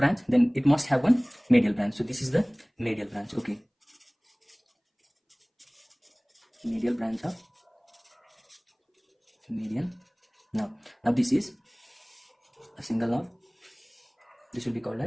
then it must have one medial branch. So this is the medial branch. Okay, medial branch of median nerve. Now this is a single nerve. This will be called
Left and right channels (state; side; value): identical; both; correlation 1.00